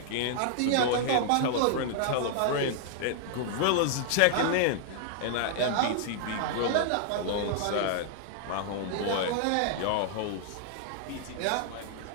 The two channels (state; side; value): different; both; correlation -0.01